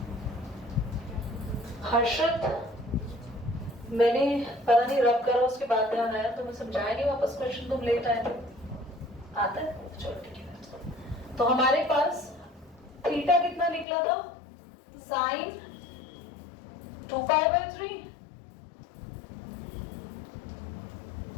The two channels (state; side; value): drops out; right; at 13.9 s